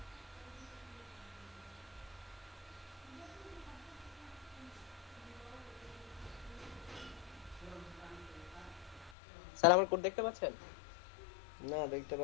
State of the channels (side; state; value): right; drops out; at 9.2 s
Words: স্যার আমার কোড দেখতে পাচ্ছেন? না, দেখতে